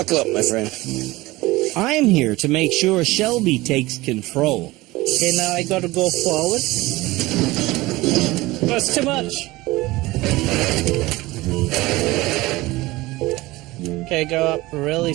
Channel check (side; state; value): left; quieter; 19.8 dB